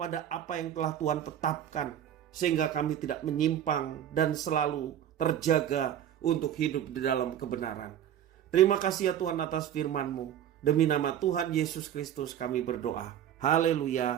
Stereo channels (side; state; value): left; quieter; 10.3 dB